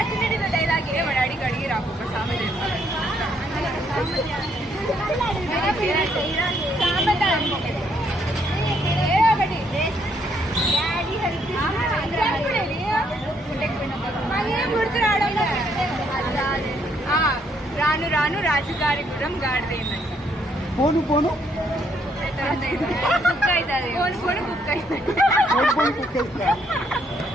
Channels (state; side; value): normal; both; correlation 0.71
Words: డైలాగ్ ఏ వాడు అడిగి అడిగి రాకు ఒక సామెత రాను రాను రాజుగారి గురం గాడిదేందంట. పోను పోను కుక్ అవుతుంది. పోను పోను కుక్ అవుతుంది.